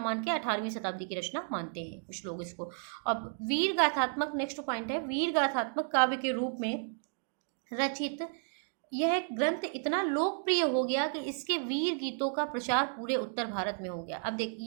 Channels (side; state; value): left; silent; 56 dB below the other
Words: मान के 18वीं शताब्दी की रचना मानते हैं कुछ लोग इसको। अब वीर गाथात्मक, नेक्स्ट पॉइंट है, वीर गाथात्मक काव्य के रूप में रचित यह ग्रंथ इतना लोकप्रिय हो गया कि इसके वीर गीतों का प्रचार पूरे उत्तर भारत में हो गया। अब देख